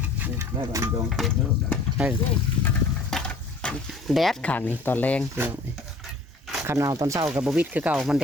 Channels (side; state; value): right; quieter; 3.2 dB